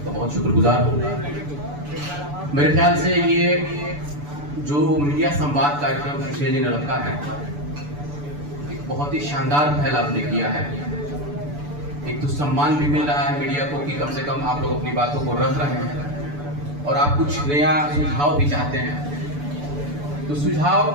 बहुत शुक्रगुजार हूँ। मेरे ख्याल से ये जो मीडिया संवाद कार्यक्रम सुशील जी ने रखा है, एक बहुत ही शानदार पहल आपने किया है। एक तो सम्मान भी मिल रहा है मीडिया को कि कम से कम आप लोग अपनी बातों को रख रहे हैं और आप कुछ नया सुझाव भी चाहते हैं। तो सुझाव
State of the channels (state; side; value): late; left; 6.9 ms